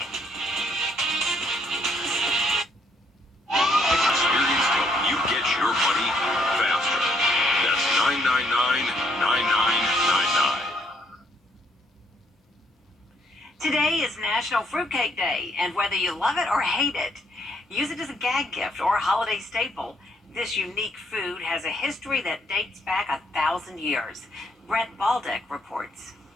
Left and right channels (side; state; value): both; normal; correlation 0.70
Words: Experience help you get your money faster. That's 999-99 Today is National Fruitcake Day, and whether you love it or hate it, use it as a gag gift or a holiday staple. This unique food has a history that dates back 1,000 years. Brett Baldick reports.